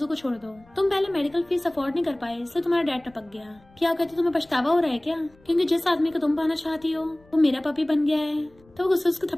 को छोड़ दो, तुम पहले मेडिकल फीस अफोर्ड नहीं कर पाए इसलिए तुम्हारा डैड टपक गया। क्या कहती तुम्हें पछतावा हो रहा है क्या, क्योंकि जिस आदमी को तुम पाना चाहती हो वो मेरा पपी बन गया है। तो वो गुस्से उसको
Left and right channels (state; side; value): noise; left; rumble, 29 dB below the sound